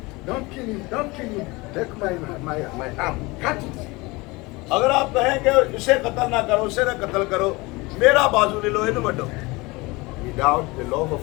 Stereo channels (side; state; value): right; quieter; 23.8 dB